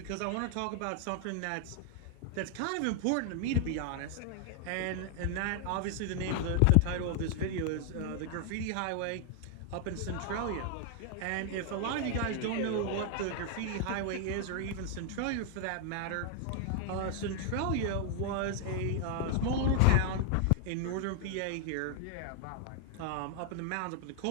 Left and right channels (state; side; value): different; both; correlation 0.00